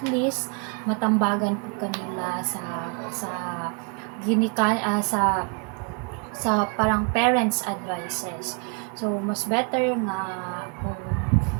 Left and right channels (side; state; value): left; quieter; 37.7 dB